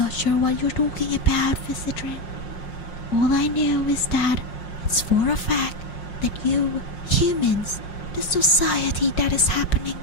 sure what you're talking about, Visitor. All I know is that it's for a fact that you, humans, the society that is happening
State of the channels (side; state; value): right; late; 5.5 ms